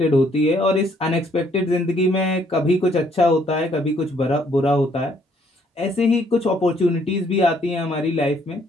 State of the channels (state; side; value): normal; both; correlation 0.66